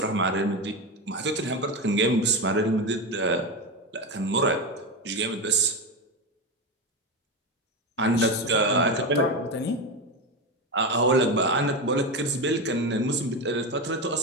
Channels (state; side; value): normal; both; correlation 0.16